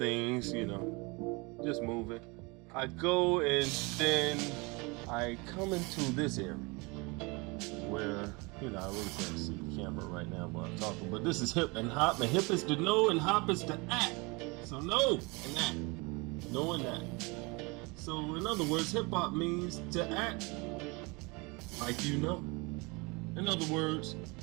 just moving, I go and then I come into this area where, I really can't see the camera right now while I'm talking, but this is hip and hop, and hip is to know and hop is to act. So know and act. Know and act. So in other words, hip hop means to act like you know. In other words,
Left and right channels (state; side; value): quieter; left; 27.3 dB